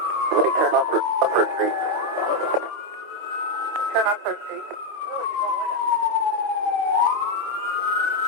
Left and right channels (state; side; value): late; left; 25 ms